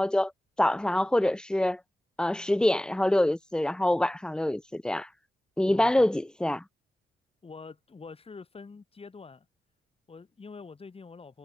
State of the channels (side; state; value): both; normal; correlation 0.98